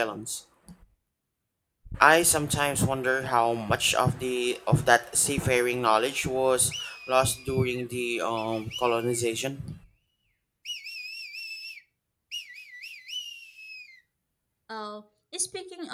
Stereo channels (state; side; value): identical; both; correlation 1.00